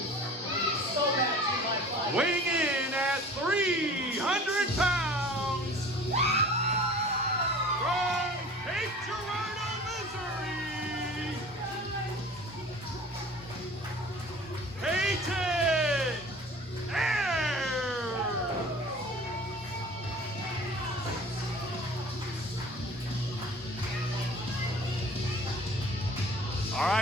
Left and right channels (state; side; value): normal; both; correlation 0.44